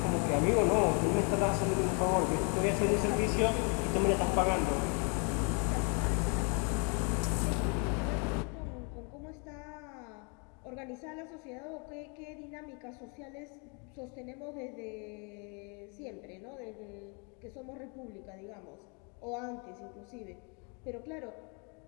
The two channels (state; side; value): quieter; right; 36.3 dB